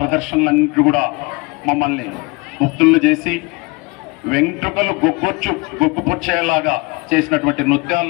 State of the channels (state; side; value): quieter; right; 26.5 dB